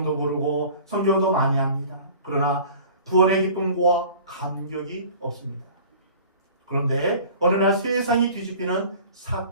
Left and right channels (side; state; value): both; inverted; correlation -0.45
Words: 부르고 성경도 많이 합니다. 그러나 구원의 기쁨과 감격이 없습니다. 그런데 어느 날 세상이 뒤집히는